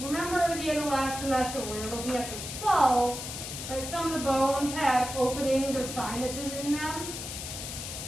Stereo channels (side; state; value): left; noise; hiss, 7 dB below the sound